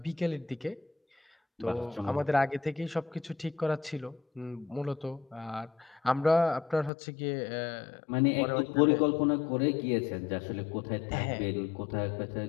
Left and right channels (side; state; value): right; drops out; at 6.9 s